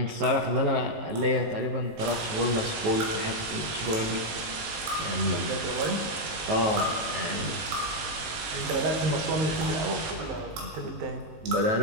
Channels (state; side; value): late; left; 19 ms